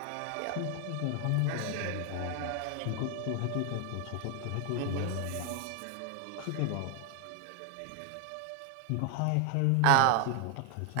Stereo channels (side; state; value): both; different; correlation 0.00